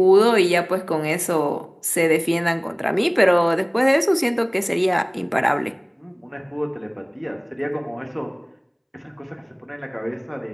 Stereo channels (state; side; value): identical; both; correlation 1.00